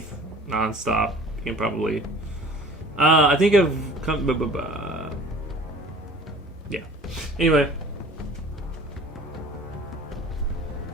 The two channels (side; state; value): both; normal; correlation 0.46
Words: nonstop, you can probably. I think I've come. Yeah. Anyway.